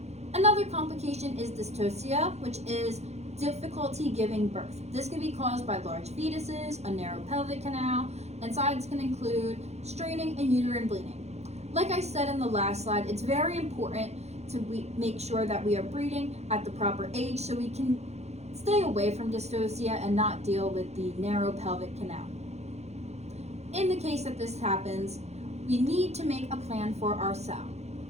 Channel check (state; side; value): late; left; 0.31 ms